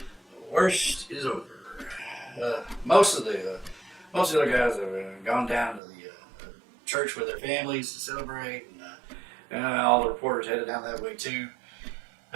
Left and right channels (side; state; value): left; drops out; at 5.8 s